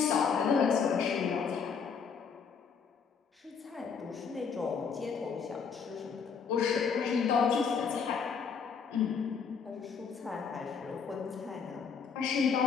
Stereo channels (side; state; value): right; quieter; 6.1 dB